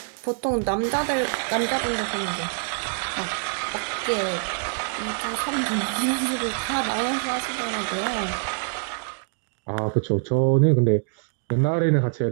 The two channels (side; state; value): left; silent; 62 dB below the other